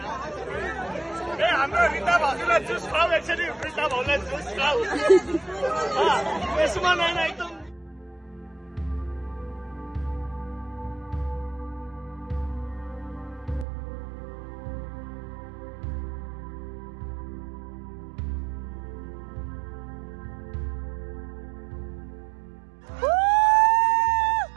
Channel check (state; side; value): drops out; left; at 13.7 s